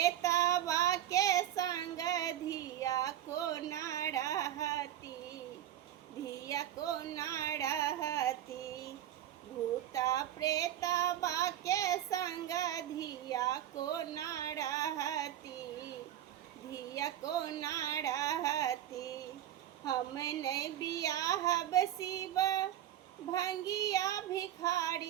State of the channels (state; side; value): quieter; left; 11.9 dB